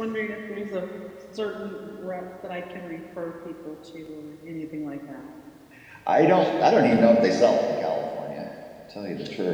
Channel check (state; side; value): identical; both; correlation 1.00